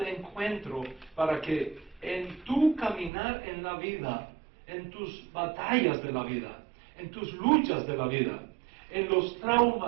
encuentro para que en tu caminar en la vida, en tus batallas de la vida, en tus luchas de la vida, en los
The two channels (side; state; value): left; drops out; at 3.1 s